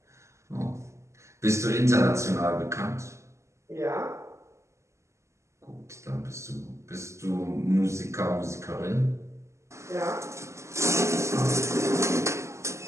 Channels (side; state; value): left; late; 0.14 ms